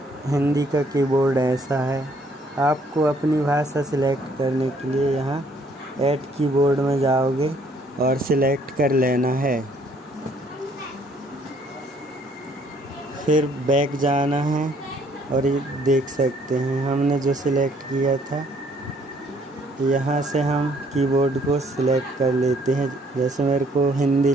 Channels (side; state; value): both; normal; correlation 0.64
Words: हिंदी का कीबोर्ड ऐसा है। आपको अपनी भाषा सिलेक्ट करने के लिए यहाँ ऐड कीबोर्ड में जाओगे और सिलेक्ट कर लेना है। फिर बैक जाना है और ये देख सकते हैं हमने जो सिलेक्ट किया था, यहाँ से हम कीबोर्ड को सिलेक्ट कर लेते हैं। जैसे मेरे को हिंदी